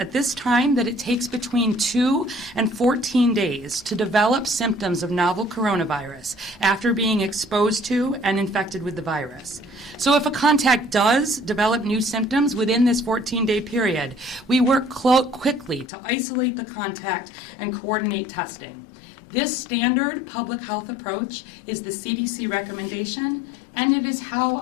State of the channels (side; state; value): right; drops out; at 15.9 s